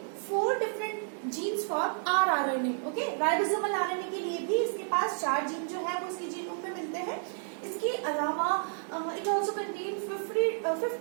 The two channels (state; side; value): silent; left; 57 dB below the other